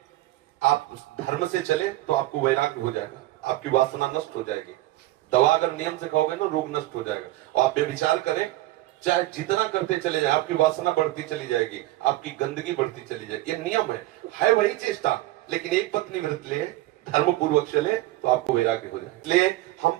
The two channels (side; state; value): left; quieter; 16.9 dB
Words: आप धर्म से चले तो आपको वैराग्य हो जाएगा, आपकी वासना नष्ट हो जाएगी। दवा अगर नियम से खाओगे ना, रोग नष्ट हो जाएगा। और आप व्यभिचार करें, चाहे जितना करते चले जाए, आपकी वासना बढ़ती चली जाएगी, आपकी गंदगी बढ़ती चली जाएगी। ये नियम है वही चेष्टा। लेकिन एक पत्नी व्रत ले, धर्म पूर्वक चले तो आपको वैराग्य हो जाए। इसलिए हम